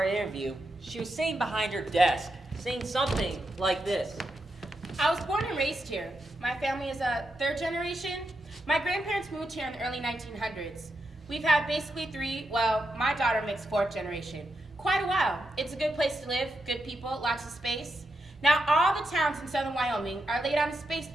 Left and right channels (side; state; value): both; normal; correlation 0.85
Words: interview, she was sitting behind her desk, saying something like this. I was born and raised here. My family is a third generation. My grandparents moved here in the early 1900s. We've had basically my daughter makes fourth generation. Quite a while. It's a good place to live, good people, lots of space. Now all the towns in southern Wyoming are laid out in space